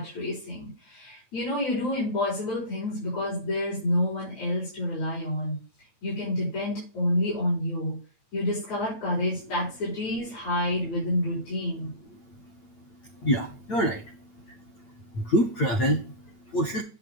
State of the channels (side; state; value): right; late; 8.8 ms